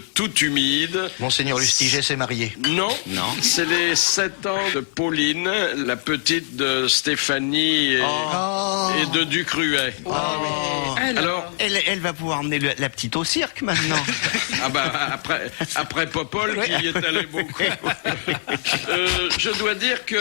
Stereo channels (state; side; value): silent; right; digital silence